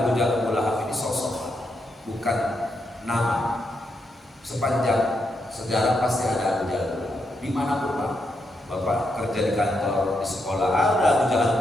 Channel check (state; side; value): normal; both; correlation 0.82